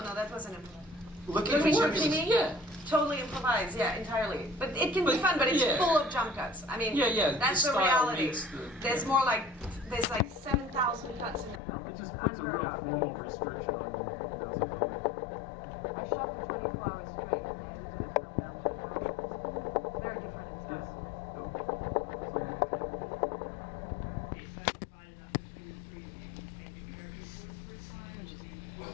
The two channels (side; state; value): right; drops out; at 11.6 s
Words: that wasn't improvised. Looking Looking for for Jimmy. Jimmy? Yeah. Totally improvised, yeah, entirely. But it can be fun, but it's yeah. full of jump cuts. I mean, Yeah, that's the the style reality. makes the- There's like 7,000 cuts in the film. It just It's puts a unheard real of. formal restriction on you, as a filmmaker. I shot for 24 hours straight and I edited a film down to an hour. It's very different in style Yes. from this. Go. Something.